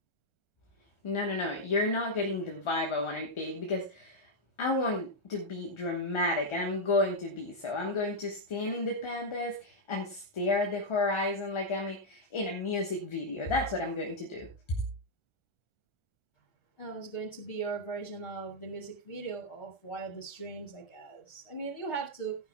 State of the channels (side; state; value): right; late; 1.4 ms